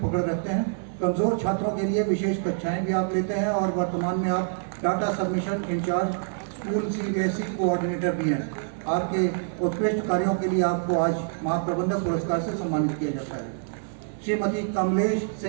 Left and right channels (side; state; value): left; silent; digital silence